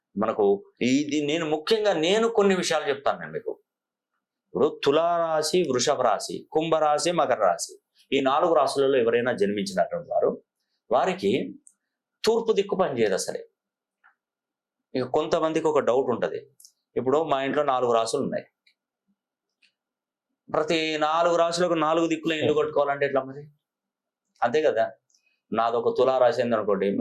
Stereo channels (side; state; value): both; identical; correlation 1.00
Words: మనకు ఇది నేను కొన్ని విషయాలు చెప్తాను నేను మీకు. ఇప్పుడు తులారాశి, వృషభ రాశి, కుంభరాశి, మకర రాశి, ఈ 4 రాశులలో ఎవరైనా జన్మించినటువంటి వారికి తూర్పు దిక్కు పనిచేయదు అసలే. ఇక కొంతమందికి ఒక డౌట్ ఉంటుంది. ఇప్పుడు మా ఇంట్లో 4 రాశులు ఉన్నాయి, ప్రతి 4 రాశులకు 4 దిక్కులో ఇల్లు కట్టుకోవాలంటే ఎట్లా మరి? అంతే కదా. నాదొక తులారాశి అయింది అనుకోండి,